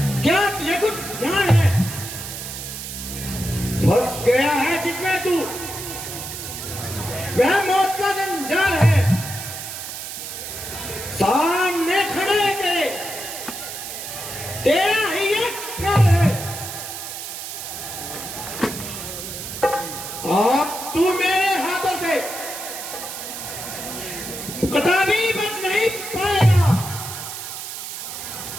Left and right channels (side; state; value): right; noise; hiss, 8 dB below the sound